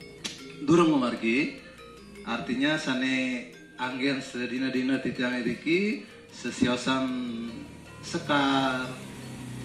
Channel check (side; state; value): both; identical; correlation 1.00